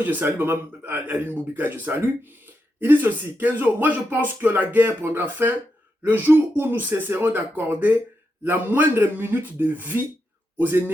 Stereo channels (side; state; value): both; normal; correlation 0.85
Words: je salue, maman Aline Moubikaï, je salue, il dit ceci, Kenzo, moi je pense que la guerre prendra fin le jour où nous cesserons d'accorder la moindre minute de vie aux